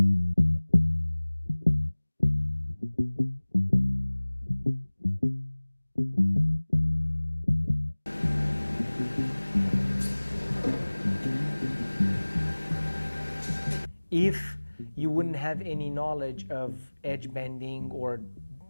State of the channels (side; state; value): both; inverted; correlation -1.00